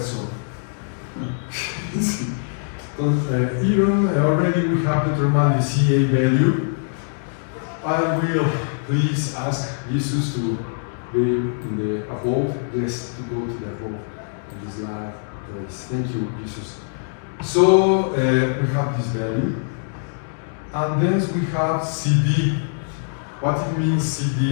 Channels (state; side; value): silent; right; digital silence